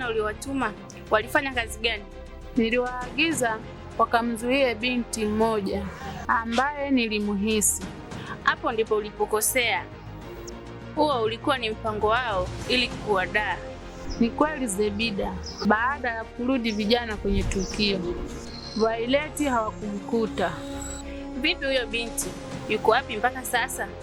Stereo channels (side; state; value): both; identical; correlation 1.00